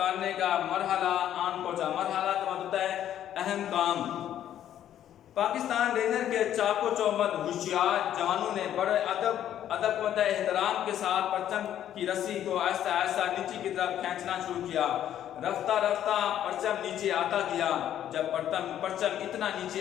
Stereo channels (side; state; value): right; quieter; 10.9 dB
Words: کا مرحلہ آن پہنچا۔ مرحلہ کا مطلب ہے اہم کام۔ پاکستان رینجر کے چاق و چوبند ہوشیار جوانوں نے بڑے ادب و احترام کے ساتھ پرچم کی رسی کو آہستہ آہستہ نیچے کی طرف کھینچنا شروع کیا۔ رفتہ رفتہ پرچم نیچے آتا گیا۔ جب پرچم اتنا نیچے